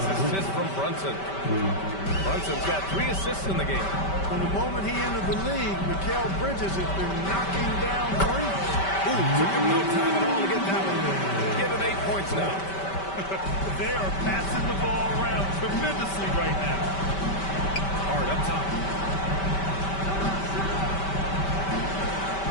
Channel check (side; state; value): right; late; 5.2 ms